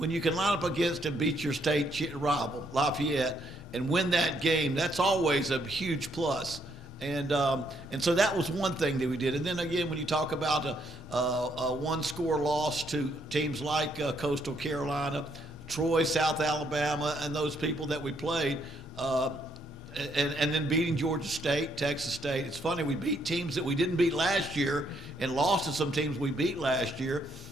you can line up against and beat your state rival, Lafayette, and win that game, that's always a huge plus. And so that was one thing that we did. And then again, when you talk about a one-score loss to teams like Coastal Carolina, Troy, South Alabama, and those people that we played, and then beating Georgia State, Texas State. It's funny, we beat teams that we didn't beat last year and lost to some teams we beat last year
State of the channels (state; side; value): normal; both; correlation 0.72